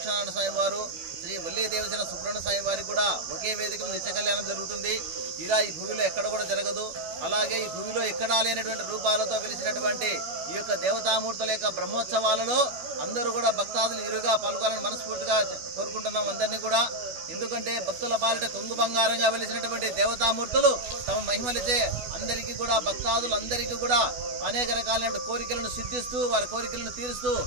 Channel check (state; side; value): late; left; 12 ms